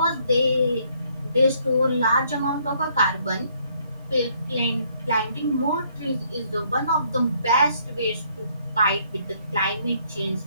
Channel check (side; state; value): both; inverted; correlation -0.67